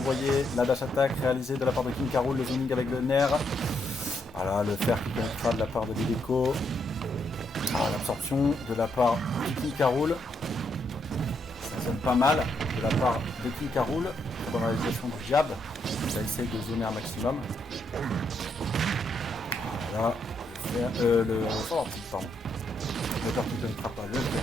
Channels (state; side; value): normal; both; correlation 0.77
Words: la dash attack réalisée de la part de King Caroul, le zoning avec le nerf. Voilà, le fer qui connectera de la part de Lileko. Ah, l'absorption de la part de King Caroul. Ça sonne pas mal de la part de King Caroul. Très bonne réalisation du jab. Ça essaye de zoner un maximum. Voilà. Le forward-tilt, pardon. Le fer qui ne connectera pas. Le fer.